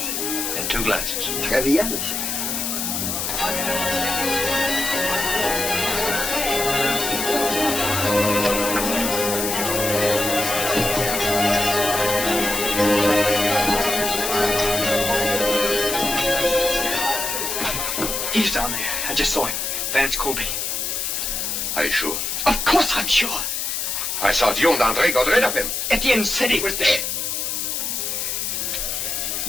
And 2 glasses. Très bien, monsieur. He's down there. I just saw him. Vance Colby. Are you sure? Of course I'm sure. I thought you and André got rid of him. Etienne said he was dead.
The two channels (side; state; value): left; noise; hiss, 2 dB below the sound